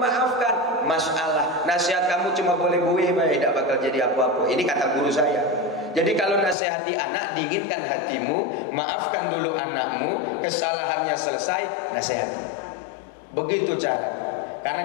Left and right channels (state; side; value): drops out; right; at 6.6 s